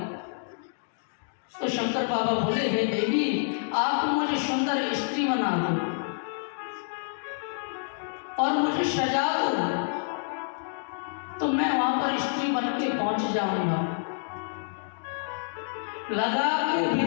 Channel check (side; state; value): right; silent; digital silence